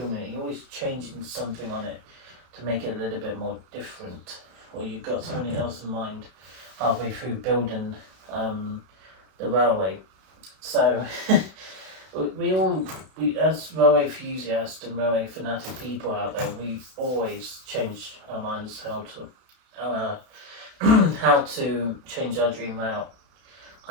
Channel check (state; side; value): late; left; 32 ms